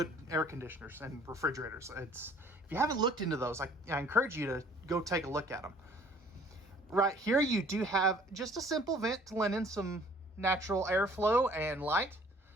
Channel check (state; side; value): normal; both; correlation 0.55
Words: air conditioners and refrigerators. If you haven't looked into those, I encourage you to go take a look at them. Right here, you do have just a simple vent to let in some natural airflow and light.